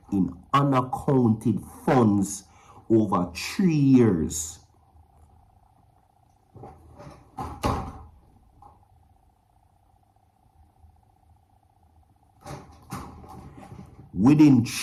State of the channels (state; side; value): identical; both; correlation 1.00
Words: in unaccounted funds over 3 years. Within